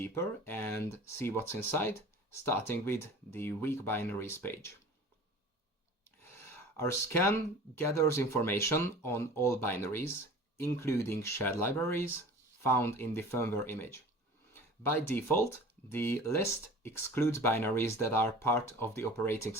and see what's inside, starting with the weak binaries page. Our scan gathers information on all binaries, including shared libraries, found in the firmware image. By default, the list excludes binaries that are part of the operating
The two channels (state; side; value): normal; both; correlation 0.41